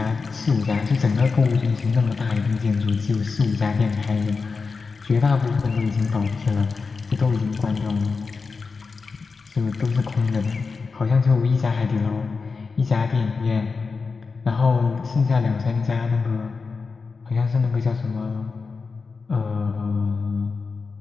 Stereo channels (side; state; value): right; quieter; 4.6 dB